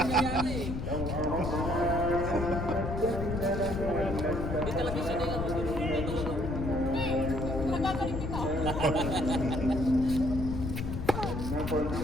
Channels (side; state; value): left; noise; rumble, 4 dB below the sound